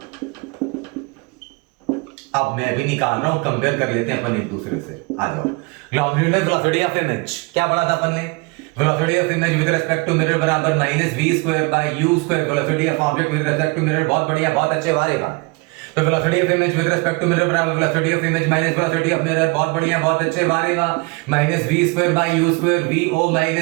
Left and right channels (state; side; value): quieter; left; 27.2 dB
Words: अब मैं भी निकाल रहा हूं, कंपेयर कर लेते हैं अपन एक दूसरे से। आ जाओ। लॉन्गिट्यूडनल वेलोसिटी ऑफ इमेज क्या पढ़ा था अपन ने? Velocity of image with respect to mirror बराबर minus v square by u square. Velocity of object with respect to mirror, बहुत बढ़िया, बहुत अच्छे वारेगा। तो velocity of image with respect to mirror बराबर velocity of image minus velocity of mirror, बहुत बढ़िया, बहुत अच्छे वारेगा। Minus v square by u square, vo